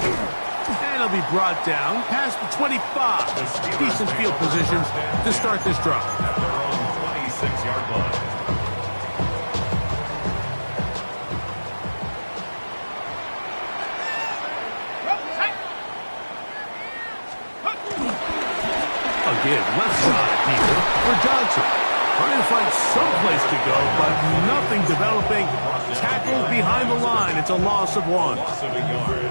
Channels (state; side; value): inverted; both; correlation -1.00